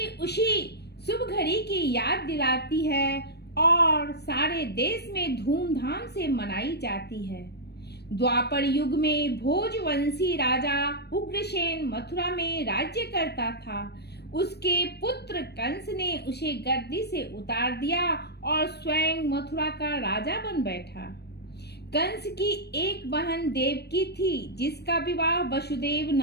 उसी शुभ घड़ी की याद दिलाती है और सारे देश में धूमधाम से मनाई जाती है। द्वापर युग में भोजवंशी राजा उग्रसेन मथुरा में राज्य करता था। उसके पुत्र कंस ने उसे गद्दी से उतार दिया और स्वयं मथुरा का राजा बन बैठा। कंस की एक बहन देवकी थी, जिसका विवाह वसुदेव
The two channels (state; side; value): late; right; 0.48 ms